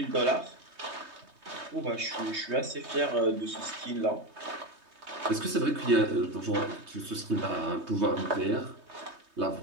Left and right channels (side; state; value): left; late; 3.2 ms